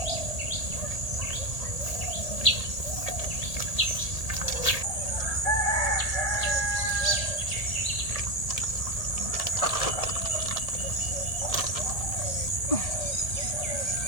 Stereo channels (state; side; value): late; right; 1.8 ms